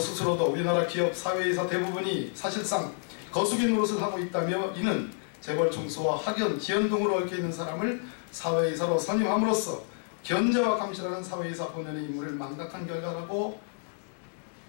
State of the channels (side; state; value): right; silent; digital silence